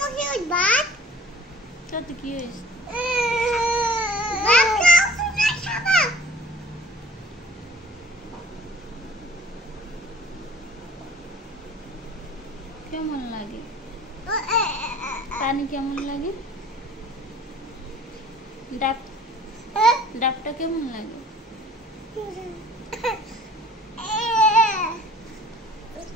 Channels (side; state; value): both; normal; correlation 0.49